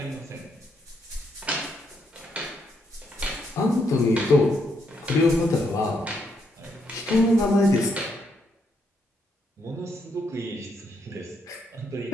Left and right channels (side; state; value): both; normal; correlation 0.76